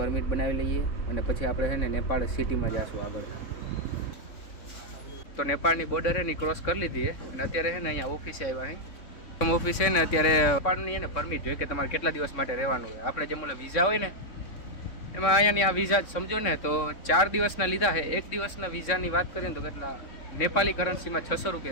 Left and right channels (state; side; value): late; right; 3.6 ms